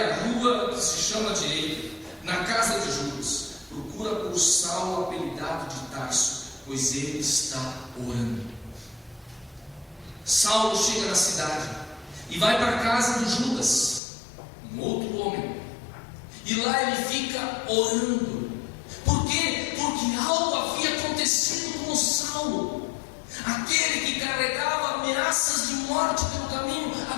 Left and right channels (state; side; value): drops out; right; at 14.0 s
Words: à rua que se chama Direita, na casa de Judas. Procura por Saulo, apelidado de Tarso, pois ele está orando. Saulo chega na cidade e vai para a casa de Judas, um outro homem, e lá ele fica orando. Por quê? Porque algo havia acontecido com Saulo. Aquele que carregava ameaças de morte pelo caminho,